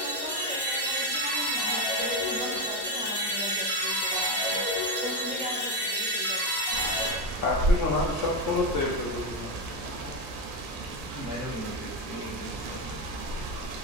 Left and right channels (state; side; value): normal; both; correlation 0.12